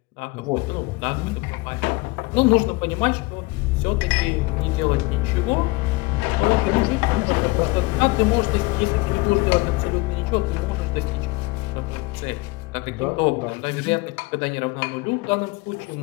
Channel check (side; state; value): right; quieter; 23.4 dB